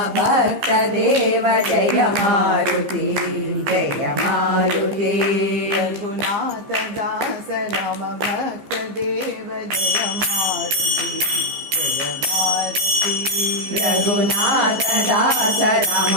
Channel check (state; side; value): late; left; 15 ms